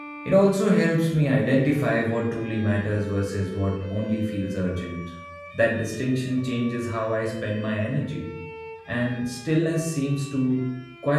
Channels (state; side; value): identical; both; correlation 1.00